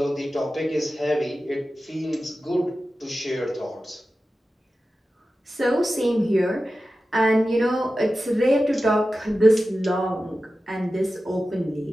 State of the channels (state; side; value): normal; both; correlation 0.93